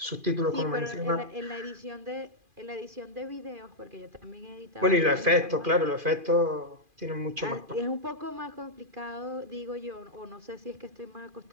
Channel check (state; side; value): late; left; 2.4 ms